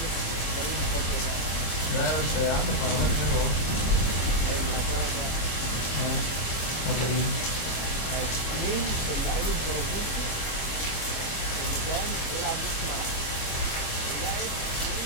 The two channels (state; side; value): late; right; 25 ms